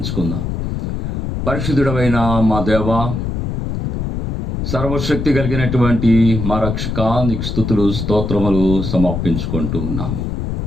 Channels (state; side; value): noise; left; rumble, 2 dB below the sound